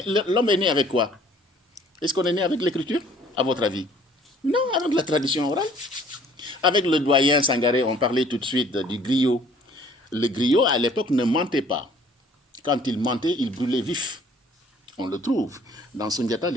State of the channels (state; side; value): normal; both; correlation 0.56